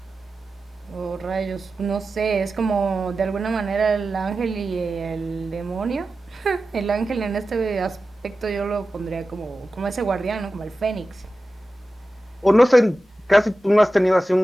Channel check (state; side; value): normal; both; correlation 0.94